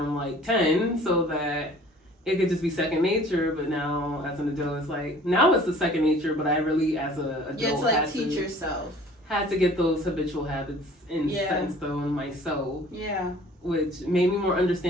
like 10, so that it could just be second nature, but now as an adult, it's like, now it's the second nature, but I really, as an adult, You have to like teach yourself. Had to get those habitual habits set in stone myself. Yeah. Which made me more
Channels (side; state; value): both; normal; correlation 0.50